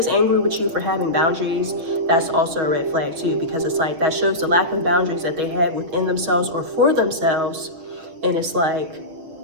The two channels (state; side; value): late; left; 6.3 ms